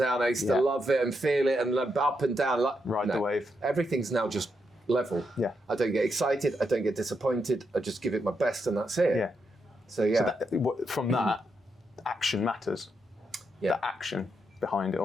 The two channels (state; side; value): normal; both; correlation 0.82